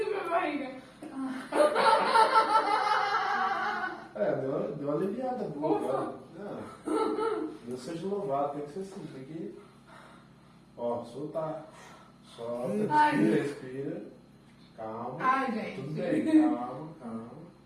minha barriga. Deu uma aliviada boa agora. Deus seja louvado, tem que ser assim, tem que... Ó, soltar. Solta, respira. Calma. Ai, gente. Tudo bem, calma.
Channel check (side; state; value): both; identical; correlation 1.00